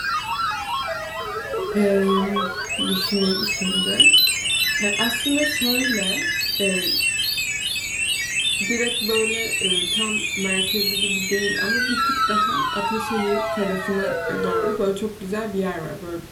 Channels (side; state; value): both; identical; correlation 1.00